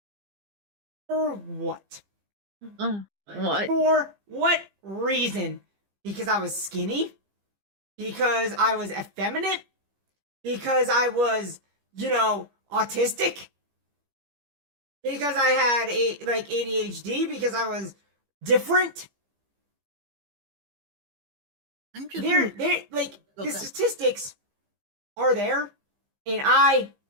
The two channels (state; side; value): late; left; 15 ms